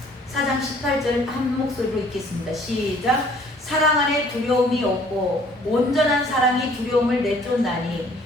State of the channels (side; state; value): both; normal; correlation 0.57